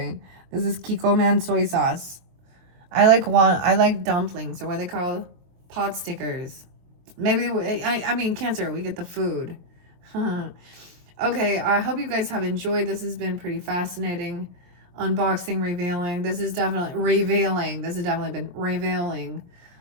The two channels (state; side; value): late; left; 22 ms